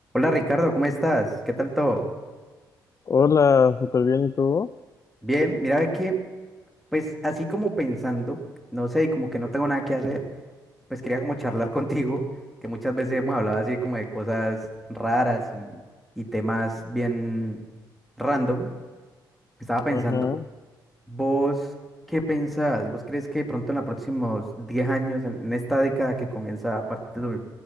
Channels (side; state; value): both; normal; correlation 0.82